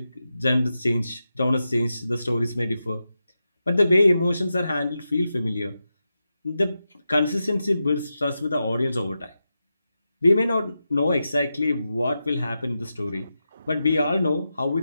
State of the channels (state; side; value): inverted; both; correlation -0.90